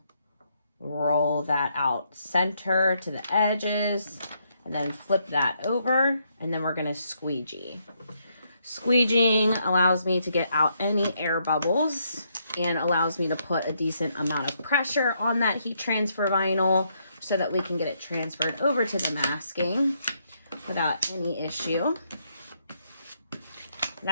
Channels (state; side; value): inverted; both; correlation -0.75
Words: roll that out center to the edges and then flip that over, and then we're going to squeegee. Squeegeeing allows me to get out any air bubbles and allows me to put a decent amount of pressure on that heat transfer vinyl so that we can get it transferred over to the masking without any issue.